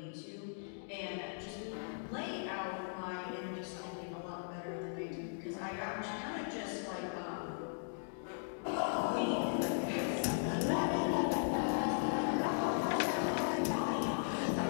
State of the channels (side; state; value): right; silent; digital silence